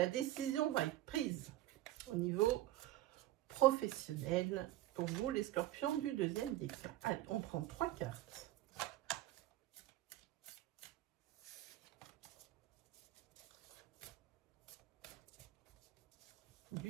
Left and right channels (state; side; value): quieter; left; 15.3 dB